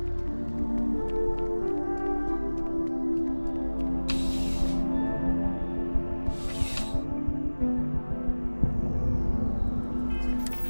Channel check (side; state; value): both; inverted; correlation -1.00